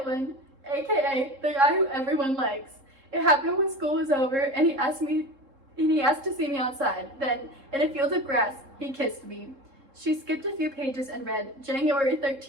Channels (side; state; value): left; late; 3.7 ms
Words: aka the guy who everyone likes. It happened when school was over and he asked to see me outside. Then, in a field of grass, he kissed me. She skipped a few pages and read, January